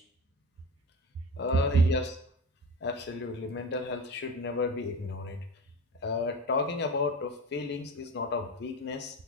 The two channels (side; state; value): both; normal; correlation 0.29